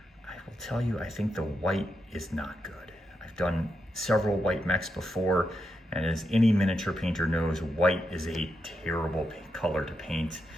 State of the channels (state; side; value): normal; both; correlation 0.85